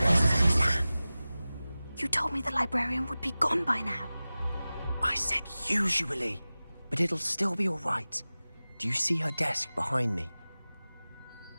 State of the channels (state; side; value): inverted; both; correlation -0.97